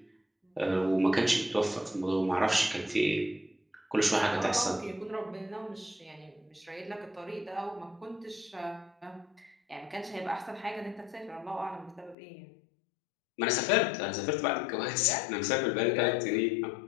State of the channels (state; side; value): drops out; right; at 12.2 s